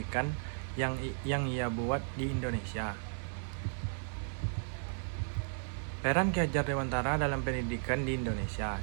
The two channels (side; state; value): left; silent; 55 dB below the other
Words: yang ia buat di Indonesia. Peran Ki Hajar Dewantara dalam pendidikan di Indonesia.